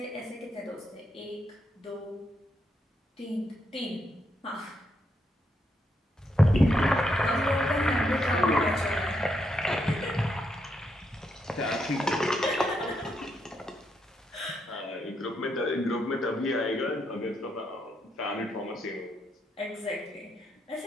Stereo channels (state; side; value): normal; both; correlation 0.79